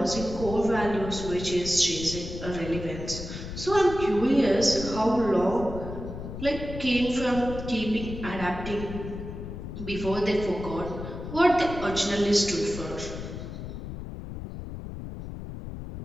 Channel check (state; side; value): noise; left; rumble, 9 dB below the sound